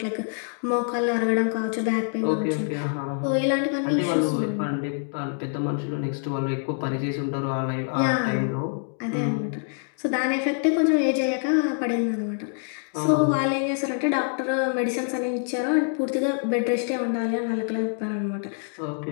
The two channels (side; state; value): right; silent; 55 dB below the other